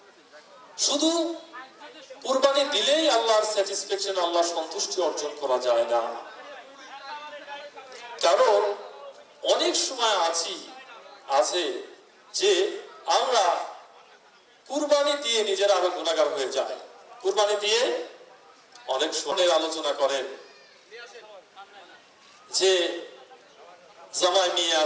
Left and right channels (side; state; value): both; identical; correlation 1.00